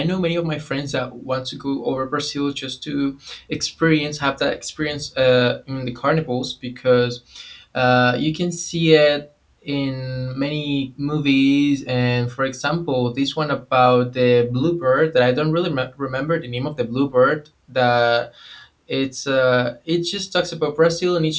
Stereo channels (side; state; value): both; identical; correlation 1.00